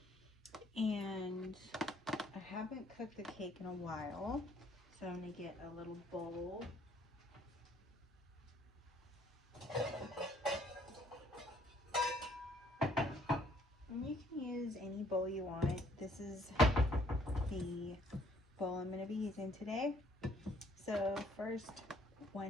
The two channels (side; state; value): both; normal; correlation 0.64